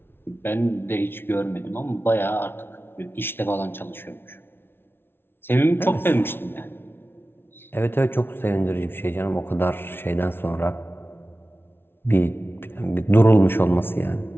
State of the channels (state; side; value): late; right; 0.11 ms